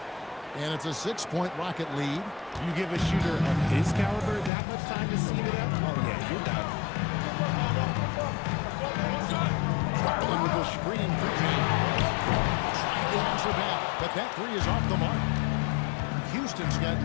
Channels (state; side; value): drops out; right; at 4.5 s